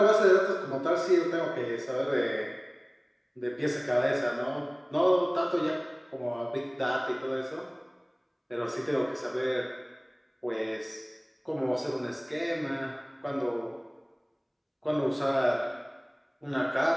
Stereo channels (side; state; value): both; identical; correlation 1.00